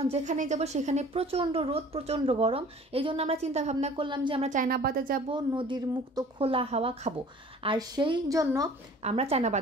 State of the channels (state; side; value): normal; both; correlation 0.48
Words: যেখানে যাব সেখানে প্রচন্ড রোদ, প্রচন্ড গরম। এই জন্য আমরা চিন্তা ভাবনা করলাম যে আমরা চায়নাবাদে যাব, নদীর মুক্ত খোলা হাওয়া খাবো। আর সেই জন্য আমরা চায়নাবাদ